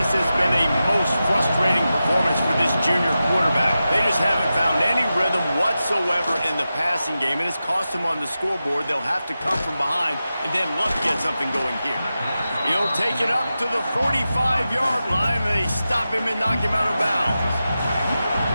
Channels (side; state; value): both; inverted; correlation -0.92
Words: has been a most frustrating performance for this junior quarterback. They just haven't found any rhythm whatsoever in the passing game, and it's cost them on the scoreboard. They'll have to come from behind and then look to get something going here. He'll take it up to the 45-yard line, and they stop him and knock him out of bounds.